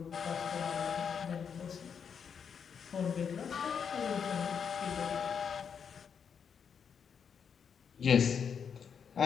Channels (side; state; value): right; quieter; 7.0 dB